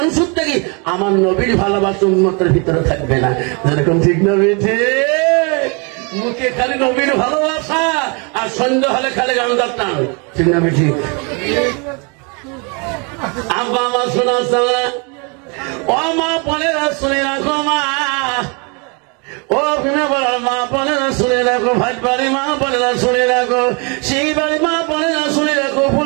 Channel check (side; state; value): left; quieter; 33.1 dB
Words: থেকে আমার নবীর ভালোবাসা উন্মতের ভিতরে থাকবে না। যেরকম ঠিক না বেঠে মুখে খালি নবীর ভালোবাসা আর সন্ধ্যা হলে খালি গান্ধার টান, ঠিক না বেঠি? আব্বা মা শোনা ও মা বোনেরা শুনে রাখো, মা ও মা বোনেরা শুনে রাখো, ভাই বাড়ি মা বোনেরা শুনে রাখো, সেই বাড়ি মা বোনেরা শুনে রাখো,